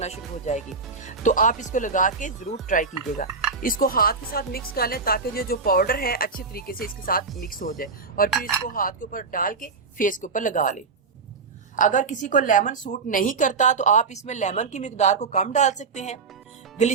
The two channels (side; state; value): left; quieter; 4.8 dB